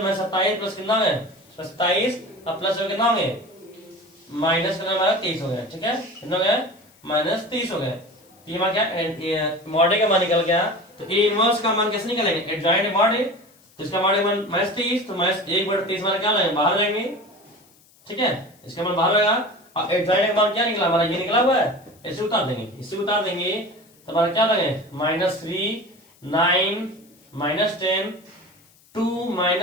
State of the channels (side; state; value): left; noise; hiss, 30 dB below the sound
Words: -27 प्लस कितना है 27 और प्लस कितना होंगे माइनस करना हमारा 23 हो गया, ठीक है, कितना हो गया -23 हो गए। ये मान क्या मॉड ए का मान निकल गया, तो ए इनवर्स का मान कैसे निकलेंगे, एडजॉइंट मॉड ए, तो इसका मॉड ए मान -23, तो -1/23 मान क्या लाएंगे, बाहर जाएंगे, ठीक है, इसका मान बाहर रहेगा। और एडजॉइंट का मान क्या निकला हमारा, ये निकला हुआ है, इसे उतार देंगे, इसे उतार देंगे तो हमारा क्या लगे -3 9 -10 2